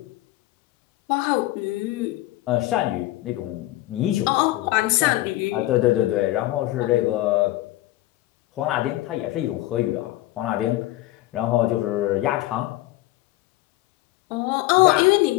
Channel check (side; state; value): right; quieter; 17.1 dB